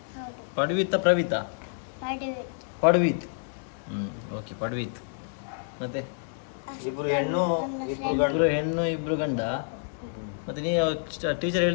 ಪ್ರವಿತಾ? ಪಡ್ವಿತ್. ಓಕೆ, ಪಡ್ವಿತ್. ಮತ್ತೆ ಇಬ್ರು ಹೆಣ್ಣು ಇಬ್ರು ಗಂಡ. ಮತ್ತೆ ನೀವು ಟೀಚರ್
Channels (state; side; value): silent; right; digital silence